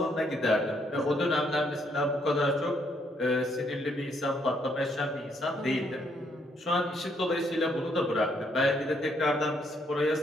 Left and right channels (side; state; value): both; normal; correlation 0.72